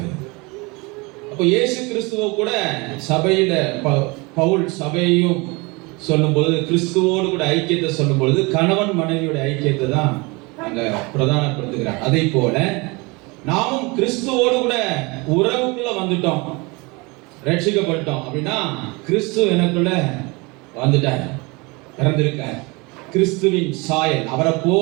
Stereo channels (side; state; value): left; quieter; 26.5 dB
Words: அப்போ இயேசு கிறிஸ்துவ கூட சபையில பவுல் சபையையும் சொல்லும் பொழுது, கிறிஸ்துவோடு கூட ஐக்கியத்தை சொல்லும் பொழுது கணவன் மனைவியோட ஐக்கியத்தை தான் அங்க பிரதானப்படுத்துகிறார். அதே போல நாமும் கிறிஸ்துவோடு கூட உறவுக்குள்ள வந்துட்டோம், ரட்சிக்கப்பட்டோம் அப்படின்னா கிறிஸ்து எனக்குள்ள வந்துட்டார், பிறந்திருக்கார். கிறிஸ்துவின் சாயல், அவரை